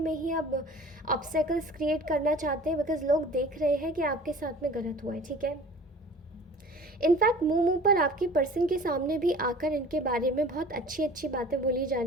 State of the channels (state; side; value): normal; both; correlation 0.44